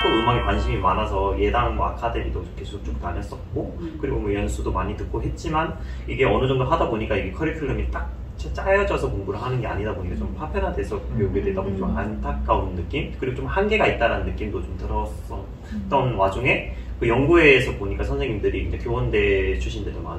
또 음악에 관심이 많아서 예당 아카데미도 계속 쭉 다녔었고, 그리고 뭐 연수도 많이 듣고 했지만 이게 어느 정도 하다 보니까 이게 커리큘럼이 딱 짜여져서 공부를 하는 게 아니다 보니까 좀 파편화돼서 배우게 되다 보니 좀 안타까운 느낌, 그리고 좀 한계가 있다는 느낌도 좀 들었었던 와중에 그 연구회에서 보니까 선생님들이 이제 교원대 출신들도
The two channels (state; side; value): identical; both; correlation 1.00